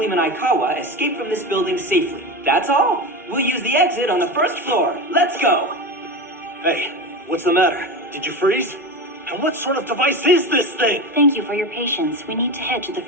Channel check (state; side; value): normal; both; correlation 0.23